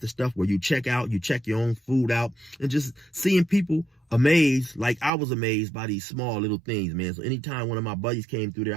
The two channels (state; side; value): drops out; left; at 5.1 s